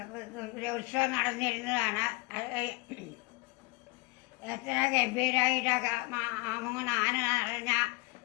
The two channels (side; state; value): right; quieter; 25.4 dB